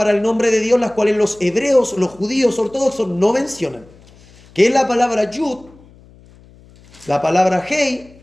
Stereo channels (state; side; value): noise; left; hum, 26 dB below the sound